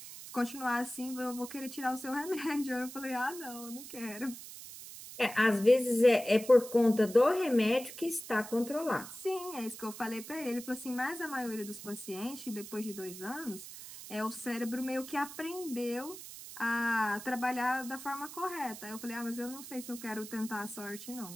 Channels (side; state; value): right; noise; hiss, 13 dB below the sound